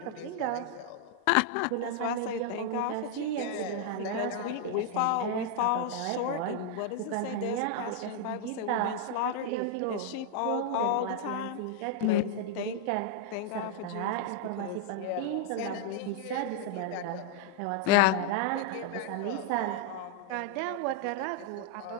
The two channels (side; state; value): both; different; correlation 0.00